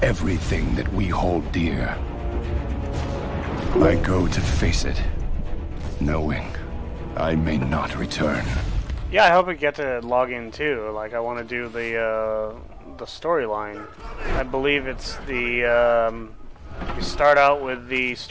everything that we hold dear. I go to face it, knowing I may not return. Yeah, I hope we get to log in too. Like, I want to do the storyline. I believe it's the you start out with the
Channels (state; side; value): identical; both; correlation 1.00